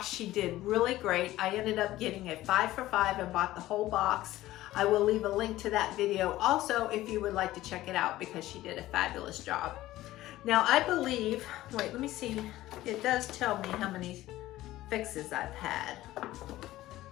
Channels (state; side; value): quieter; right; 15.8 dB